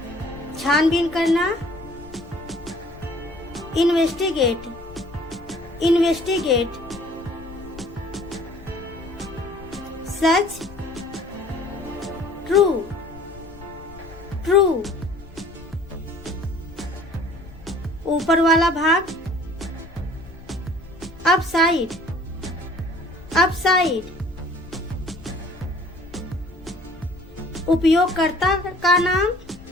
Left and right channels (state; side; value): noise; left; rumble, 19 dB below the sound